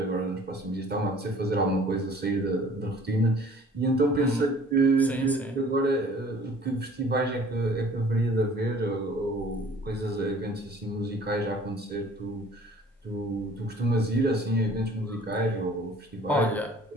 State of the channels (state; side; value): normal; both; correlation 0.52